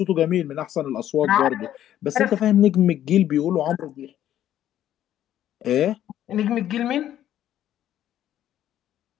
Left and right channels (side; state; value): right; quieter; 11.7 dB